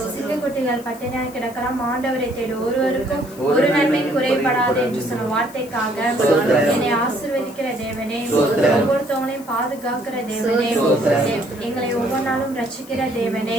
சிங்கக்குட்டிகள் பட்டினியாய் கிடக்கலாம், ஆண்டவரை தேடு ஒருவருக்கும் ஒரு நன்மை குறைபடாது என்று சொன்ன வார்த்தைக்காக, என்னை ஆசீர்வதிக்கிற தேவனே, ஒவ்வொருத்தவங்களையும் பாதுகாக்கிற தேவனே, எங்களை ஒவ்வொரு நாளும் ரட்சிக்கிற தேவனே,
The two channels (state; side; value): noise; left; hiss, 20 dB below the sound